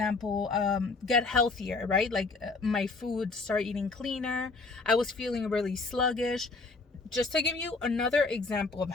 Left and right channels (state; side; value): quieter; right; 3.7 dB